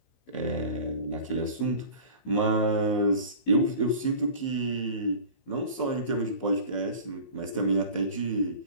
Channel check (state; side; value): late; right; 16 ms